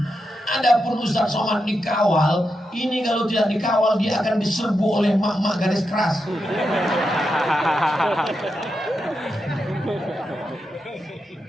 Adapun Ustaz Somad dikawal, ini kalau tidak dikawal dia akan diserbu oleh mak-mak garis keras.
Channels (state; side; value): normal; both; correlation 0.86